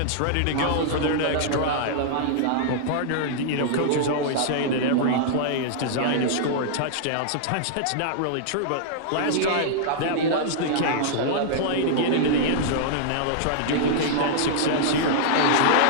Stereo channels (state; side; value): different; both; correlation -0.01